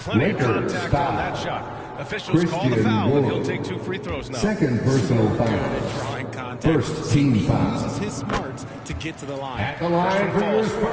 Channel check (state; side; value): identical; both; correlation 1.00